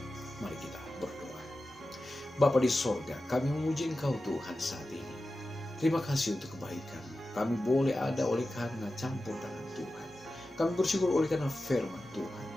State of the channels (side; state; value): both; normal; correlation 0.93